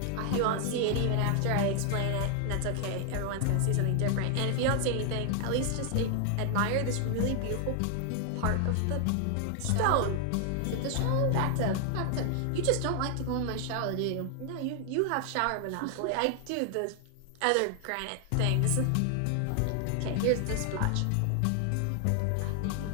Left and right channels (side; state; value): both; different; correlation 0.00